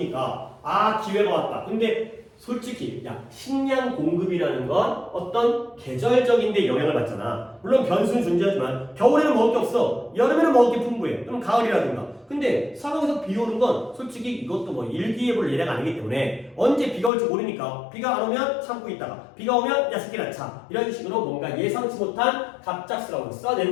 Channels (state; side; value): drops out; right; at 17.1 s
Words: 아, 기회가 왔다. 근데 솔직히 야, 식량 공급이라는 건 어떤 계절적인데 영향을 받잖아. 물론 변수는 존재하지만 겨울에는 먹을 게 없어. 여름에는 먹을 게 풍부해. 그럼 가을이라든가. 근데 사막에서 비 오는 건 솔직히 이것도 뭐 일기예보를 예례가 아니기 때문에 언제 비가 올지 모르니까 비가 안 오면 참고 있다가 비가 오면 야 새끼라 차 이런 식으로 뭔가 예상치 못한 갑작스러운